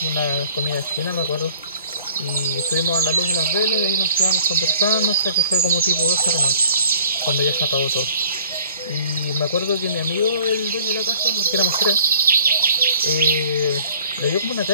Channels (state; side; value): inverted; both; correlation -0.54